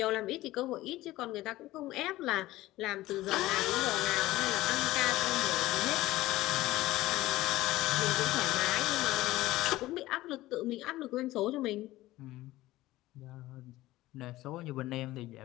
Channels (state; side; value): quieter; right; 17.0 dB